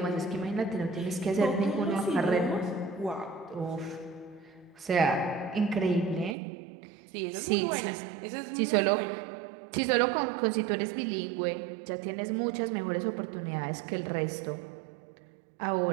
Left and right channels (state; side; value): drops out; left; at 6.4 s